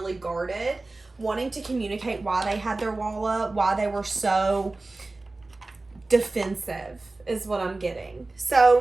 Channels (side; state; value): left; quieter; 3.2 dB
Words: guarded, wanting to communicate why they had their wall up, why they were so defensive is what I'm getting.